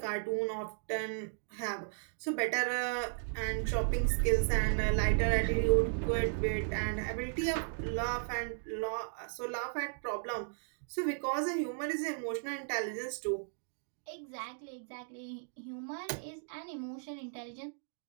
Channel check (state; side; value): silent; left; digital silence